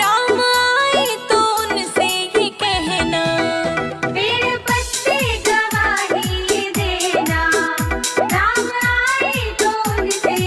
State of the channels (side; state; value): both; identical; correlation 1.00